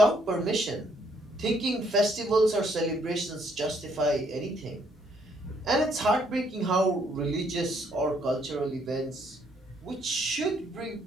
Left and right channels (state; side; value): normal; both; correlation 0.69